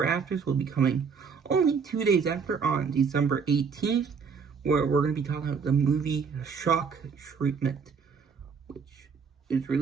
Afters will be coming only 2 days after, on December 18th, where we're going to be talking about the movie Shock Treatment, which is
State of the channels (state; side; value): quieter; left; 5.9 dB